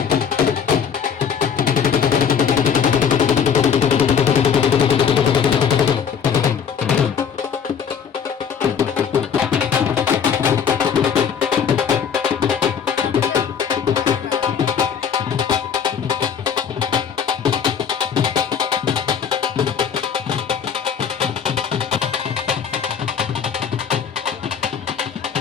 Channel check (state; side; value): quieter; right; 7.3 dB